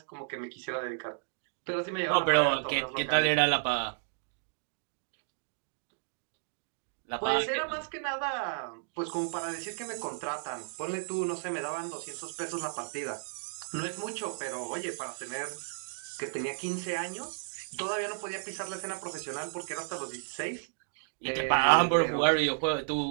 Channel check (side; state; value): left; silent; digital silence